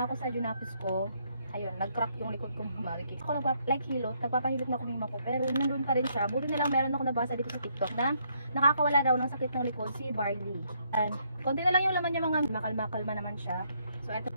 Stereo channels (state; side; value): inverted; both; correlation -0.72